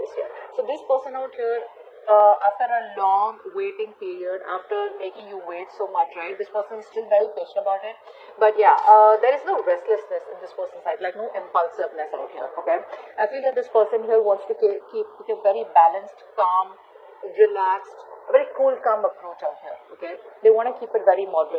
here. So this person out here, after a long waiting period, after making you wait so much, right, this person is still very patient about it. But yeah, there is no restlessness in this person's side, like no impulsiveness out here, okay? I feel that this person here wants to keep a very balanced, calm, relaxed, a very cool, calm approach out here, okay? They want to keep it very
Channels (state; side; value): identical; both; correlation 1.00